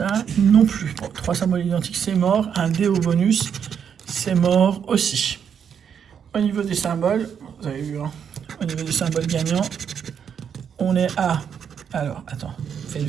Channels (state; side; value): quieter; left; 7.7 dB